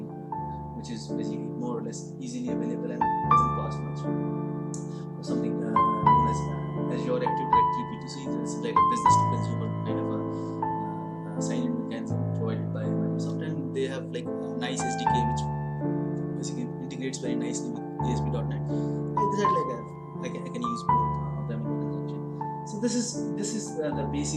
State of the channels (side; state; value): both; identical; correlation 1.00